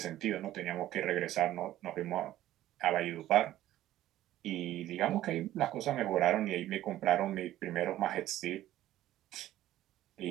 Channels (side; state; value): left; quieter; 13.9 dB